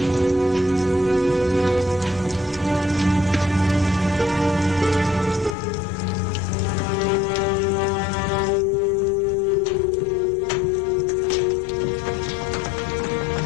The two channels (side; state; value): right; drops out; at 5.6 s